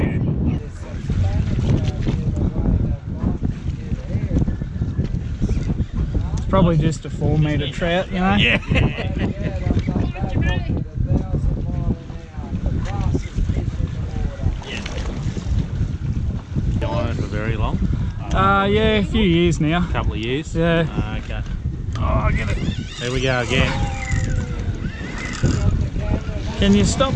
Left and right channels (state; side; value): identical; both; correlation 1.00